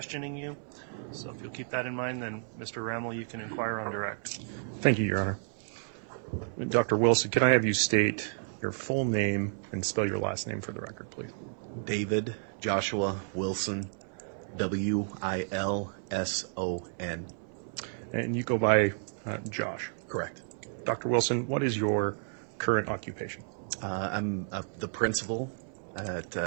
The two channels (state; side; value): silent; left; 57 dB below the other